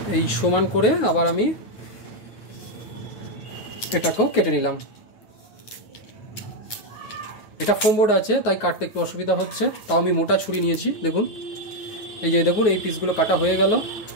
এই সমান করে আবার আমি এটাকেও কেটে নিলাম। এটা ফোম বোর্ড আছে তাই কাটতে একটু অসুবিধা হচ্ছে, তাও আমি মোটা ছুরি নিয়েছি। দেখুন এই যে দেখুন এই পিসগুলো কাটা হয়ে গেল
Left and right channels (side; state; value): right; late; 9.4 ms